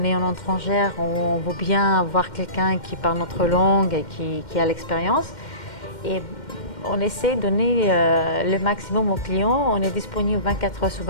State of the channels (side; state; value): right; late; 2.1 ms